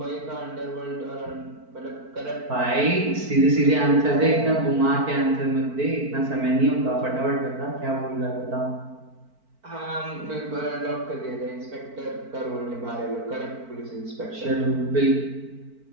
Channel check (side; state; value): left; late; 4.5 ms